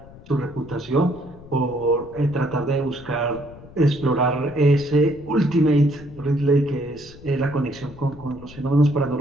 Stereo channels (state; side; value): noise; left; rumble, 19 dB below the sound